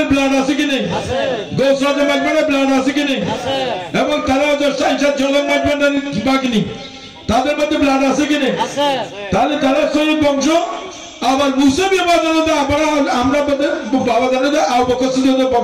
ব্লাড আছে কি নেই? আছে। গৌসল মাইজভান্ডারির ব্লাড আছে কি নেই? আছে। এবং তারা সাইনসাদ জলম মাইজভান্ডারির বাকি নেই, তাদের মধ্যে ব্লাড আছে কি নেই? আছে। তাহলে তারা শহীদ বংশ। আবার মুসাবিয়া বাবা আমরা বাবা জানে আবু বকর সিদ্দিকের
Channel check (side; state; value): both; identical; correlation 1.00